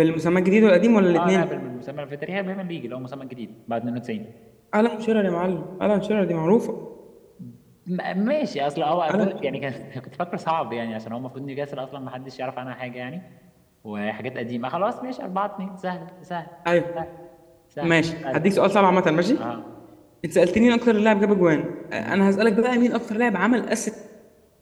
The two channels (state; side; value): identical; both; correlation 1.00